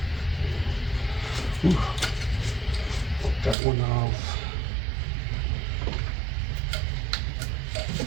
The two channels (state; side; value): drops out; left; at 3.6 s